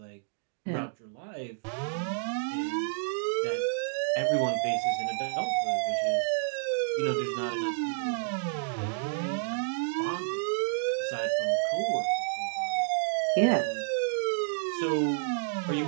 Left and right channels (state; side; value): silent; left; digital silence